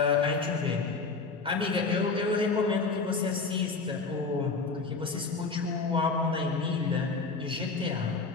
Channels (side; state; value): right; quieter; 4.3 dB